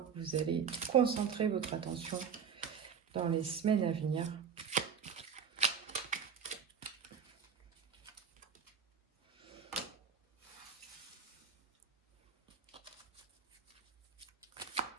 vous allez concentrer votre attention dans les semaines à venir?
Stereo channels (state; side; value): quieter; left; 7.0 dB